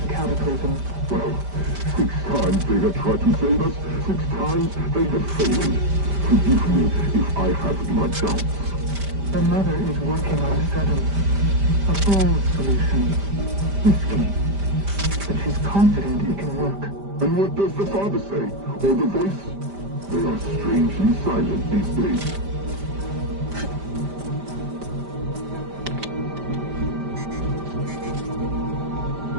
the cataclysm. Well, 6 times they have tried to save us, 6 times they have failed. Forgive me if I have my doubts. The mother is working on a 7th. A bold solution. Risky. But she's confident it can work. And what does the father say? Or the voice? They are strangely silent these days.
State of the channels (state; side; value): late; left; 5.1 ms